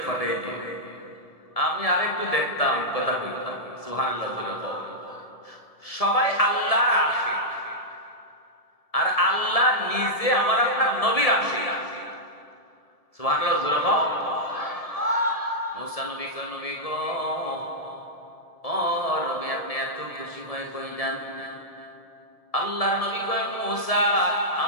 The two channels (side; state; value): right; late; 1.7 ms